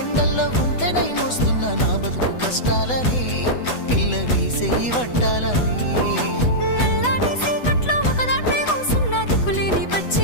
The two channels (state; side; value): late; right; 8.1 ms